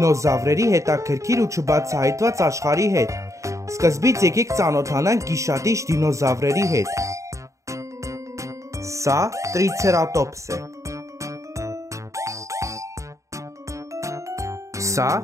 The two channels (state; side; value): late; left; 0.15 ms